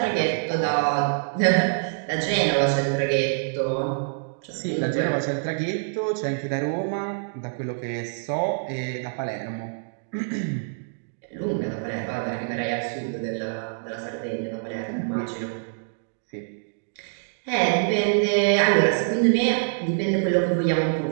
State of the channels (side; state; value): left; silent; digital silence